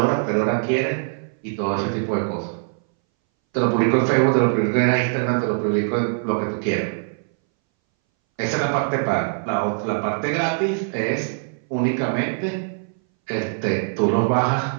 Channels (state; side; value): silent; left; 62 dB below the other